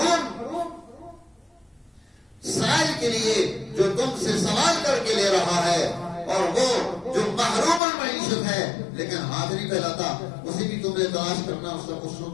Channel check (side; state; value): right; drops out; at 7.8 s